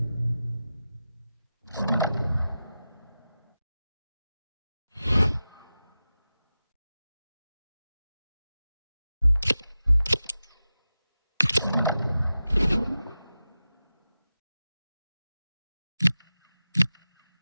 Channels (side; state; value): both; inverted; correlation -0.93